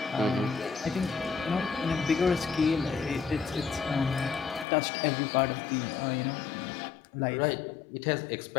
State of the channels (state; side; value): drops out; right; at 4.7 s